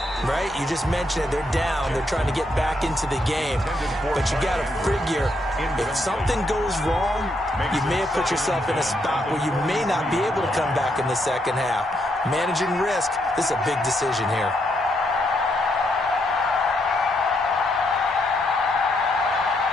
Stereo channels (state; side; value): normal; both; correlation 0.77